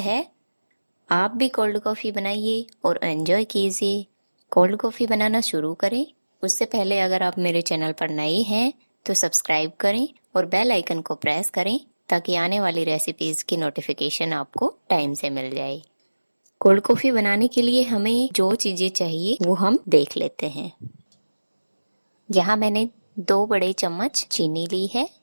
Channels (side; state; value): both; inverted; correlation -1.00